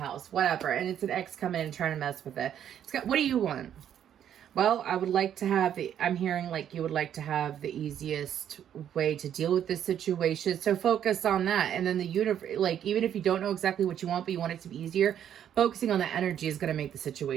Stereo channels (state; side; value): quieter; left; 9.8 dB